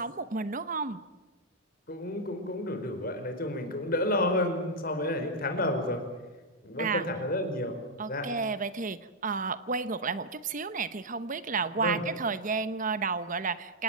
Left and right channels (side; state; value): both; normal; correlation -0.03